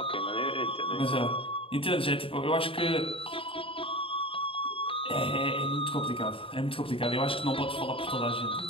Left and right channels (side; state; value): right; late; 0.26 ms